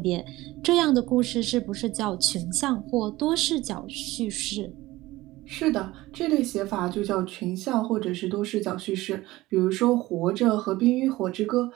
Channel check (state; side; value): quieter; left; 18.2 dB